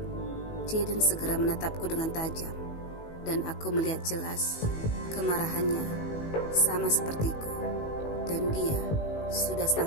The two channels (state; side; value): late; right; 18 ms